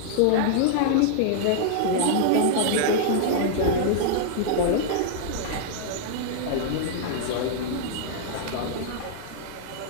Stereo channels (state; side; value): different; both; correlation -0.01